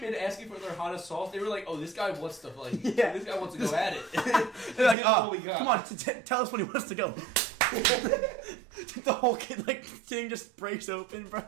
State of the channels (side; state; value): left; drops out; at 5.0 s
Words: in asking for their hottest sauce, they were like, "Oh, this guy wants to like, Yeah. this guy wants to go at it." They're like, This is what oh, we got." come on, tell us when he wants to go. The whole kid, like, thing just breaks open,